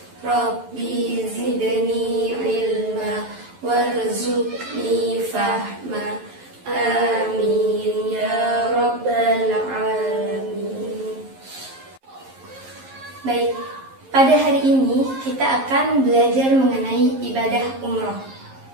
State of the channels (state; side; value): late; left; 11 ms